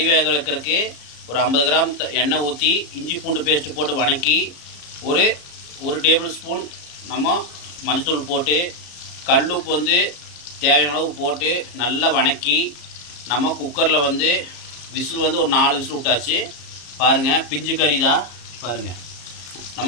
வேக வைக்கிறதுக்கு ஒரு 50 கிராம் எண்ணெய் ஊற்றி இஞ்சி பூண்டு பேஸ்ட்டு போட்டு வணக்கி ஒரு டேபிள் ஸ்பூன் நம்ம மஞ்சத்தூள் போட்டு கல்லுப்பு வந்து தேவையான அளவு போட்டு நல்லா வணக்கி நம்ம குக்கரில் வந்து விசில் வந்து ஒரு 4 விசில் விட்டாச்சு. பாருங்கள், பிஞ்சு கறி தான். பாருங்கள்,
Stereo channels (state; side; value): late; right; 34 ms